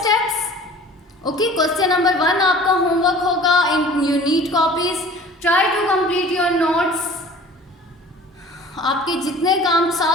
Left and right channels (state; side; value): normal; both; correlation 0.45